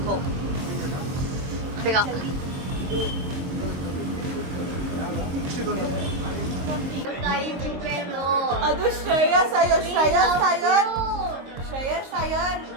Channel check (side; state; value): left; late; 22 ms